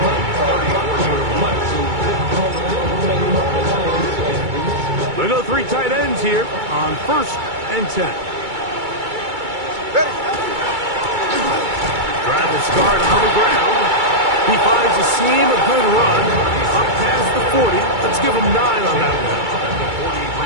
We'll go 3 tight ends here on 1st and 10. Drive the start on the ground. He finds a seam, a good run. Up past the 40. Let's give him 9 on that one.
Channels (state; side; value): late; left; 2.3 ms